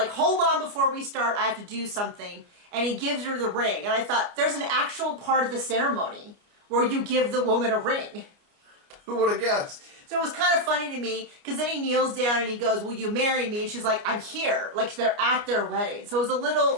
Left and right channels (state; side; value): late; left; 29 ms